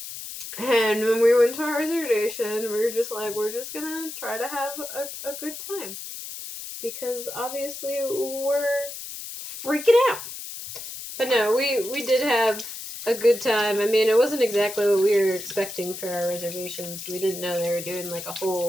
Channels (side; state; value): left; noise; hiss, 10 dB below the sound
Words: And when we went to our reservation, we were just like, we're just gonna try to have a good time. Because obviously we're freaking out. But no, we did have a good time. I mean, it wasn't exactly what we were expecting for our reservations. We didn't know they were doing like a